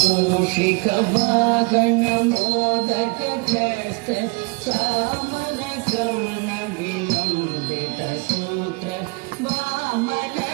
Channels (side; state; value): left; quieter; 29.9 dB